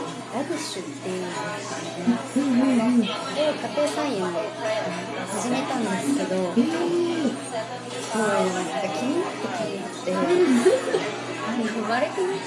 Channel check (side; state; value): both; identical; correlation 1.00